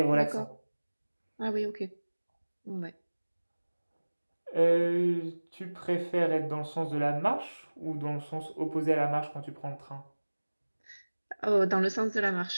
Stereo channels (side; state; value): both; inverted; correlation -1.00